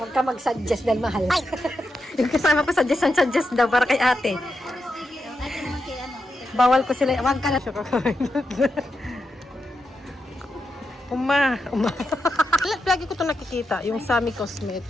ka mag-suggest dahil mahal. Yung kasama ko suggest daw para kay ate. Bawal ko sila. Huwag ka na. Uma. Lagi ko ito nakikita. Yung Sami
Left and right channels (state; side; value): normal; both; correlation 0.87